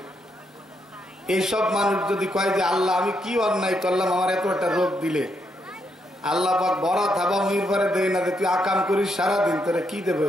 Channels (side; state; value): both; normal; correlation 0.78